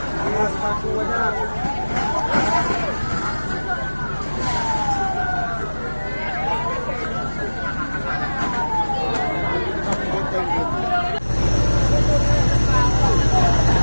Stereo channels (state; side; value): inverted; both; correlation -1.00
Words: Mas paku banyak.